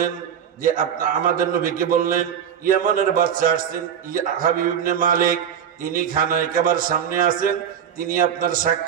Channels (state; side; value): quieter; left; 8.5 dB